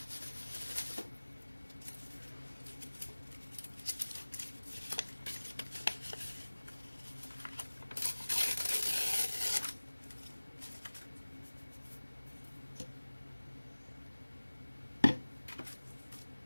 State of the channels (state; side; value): inverted; both; correlation -1.00